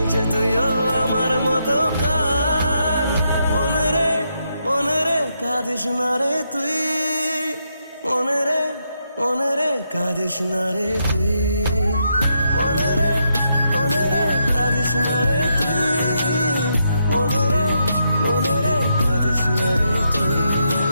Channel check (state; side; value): inverted; both; correlation -0.80